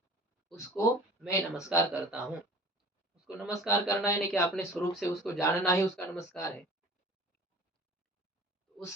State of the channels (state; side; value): normal; both; correlation 0.44